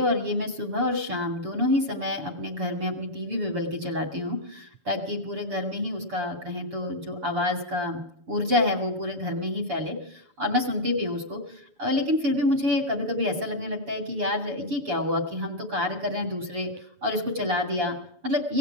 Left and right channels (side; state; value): left; late; 6.9 ms